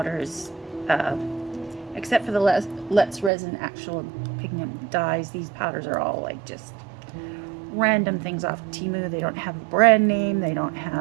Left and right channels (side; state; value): left; drops out; at 3.3 s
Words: except for the Let's Resin actual pigment dyes, these powders are all like just random things off Temu. They don't have a brand name. They don't